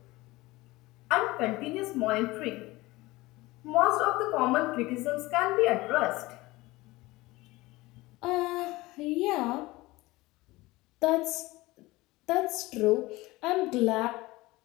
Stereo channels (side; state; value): right; quieter; 20.2 dB